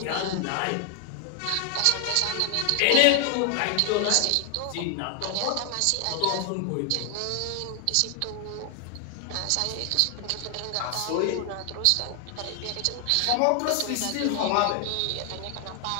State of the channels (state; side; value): different; both; correlation 0.00